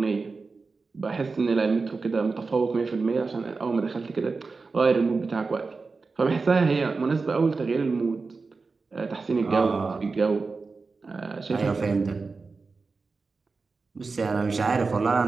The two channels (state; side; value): quieter; left; 4.2 dB